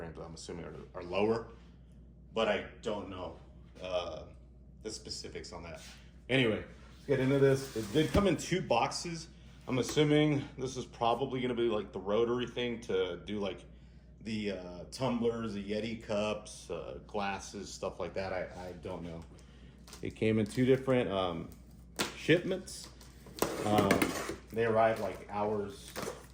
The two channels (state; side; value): identical; both; correlation 1.00